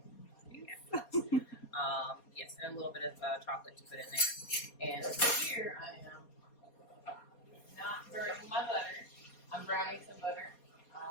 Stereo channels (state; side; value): late; right; 4.2 ms